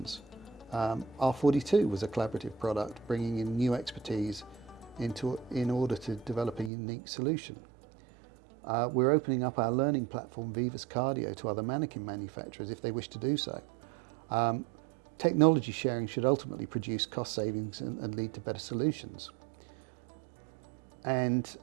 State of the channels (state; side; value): drops out; left; at 6.7 s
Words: R42 was a collaborative product, bringing in new expertise in order to develop a unique solution. We're opening up our learning platform, Vivus Cardio, to other manikin manufacturers if they wish to do so. Technology sharing should ultimately produce cost savings and lead to better solutions. And